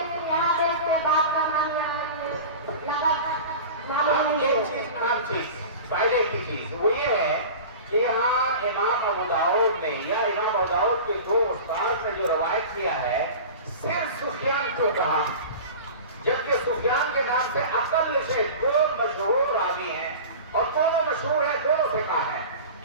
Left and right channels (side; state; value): both; inverted; correlation -0.35